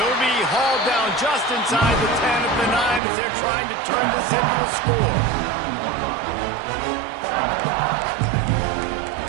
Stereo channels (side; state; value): left; drops out; at 3.0 s